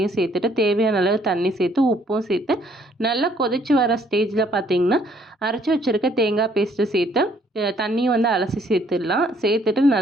சேர்த்துட்டு தேவையான அளவு தண்ணி சேர்த்து உப்பும் சேர்த்து நல்லா கொதிச்சு வர ஸ்டேஜில் பார்த்தீங்கன்னா அரைச்சி வச்சுருக்க தேங்காய் பேஸ்ட்டு சேர்த்து தண்ணியும் வந்து அலசி சேர்த்துடலாம். சேர்த்துட்டு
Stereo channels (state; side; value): normal; both; correlation 0.65